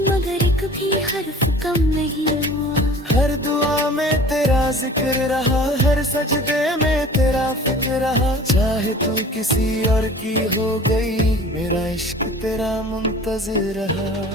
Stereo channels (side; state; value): both; normal; correlation 0.44